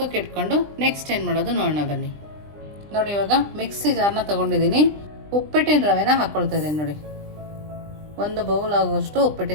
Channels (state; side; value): late; left; 20 ms